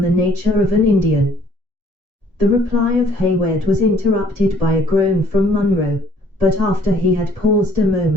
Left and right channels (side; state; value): left; late; 1.7 ms